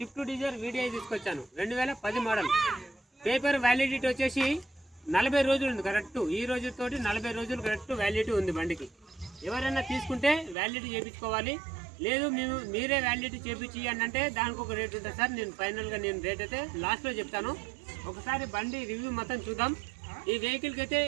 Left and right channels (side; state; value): left; drops out; at 10.6 s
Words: డిజైర్ వీడియో తీసుకొచ్చాను. 2010 మోడల్. పేపర్ వ్యాలిడిటీ వచ్చేసి 40 రోజులు ఉంది కరెక్ట్. ఈ రోజుతోటి 40 రోజులు కరెక్ట్ వ్యాలిడిటీ ఉంది బండికి. ఎవరైనా తీసుకుంటే వ్యాలిడిటీ చేయించుకోవాలి. లేదు మీరే వ్యాలిడిటీ చేయించి అంటే దానికి ఒక రేట్ ఉంటుంది సార్. నేను ఫైనల్గా రేట్ అయితే లాస్ట్లో చెప్తాను. ఒకసారి బండి రివ్యూ మొత్తం చూద్దాం. ఈ వెహికల్కి అయితే